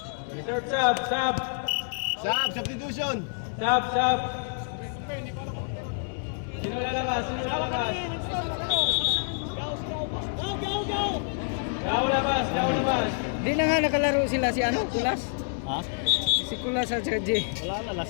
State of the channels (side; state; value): right; silent; 60 dB below the other